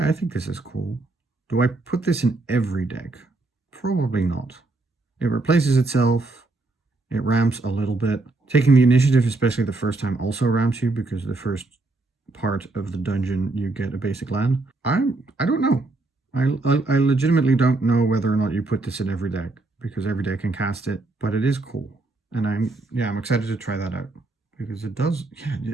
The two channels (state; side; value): quieter; left; 3.1 dB